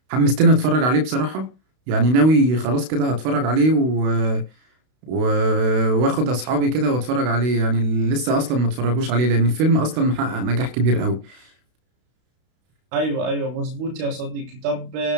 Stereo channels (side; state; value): left; late; 32 ms